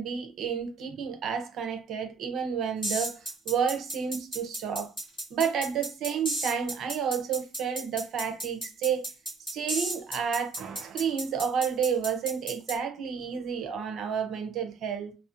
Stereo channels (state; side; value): quieter; left; 5.9 dB